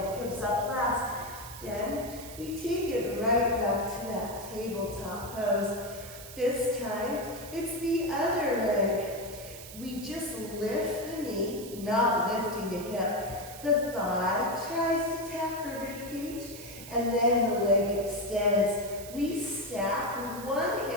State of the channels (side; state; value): right; noise; hiss, 14 dB below the sound